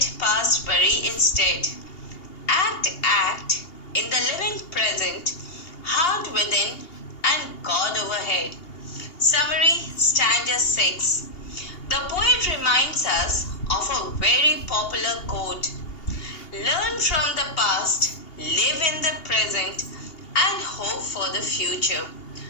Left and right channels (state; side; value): late; right; 2.8 ms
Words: past bury instead. Act in the living present, heart within and God overhead. Summary, stanza 6. The poet reminds us of a very popular quote: Learn from the past, live in the present, and hope for the future.